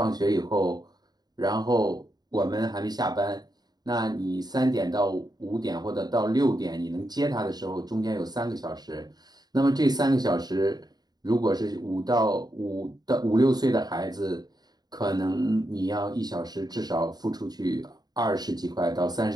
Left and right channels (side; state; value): left; late; 0.19 ms